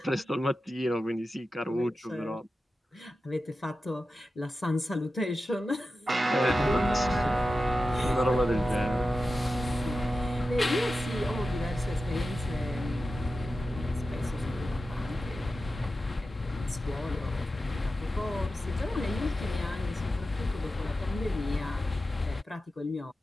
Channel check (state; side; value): normal; both; correlation 0.92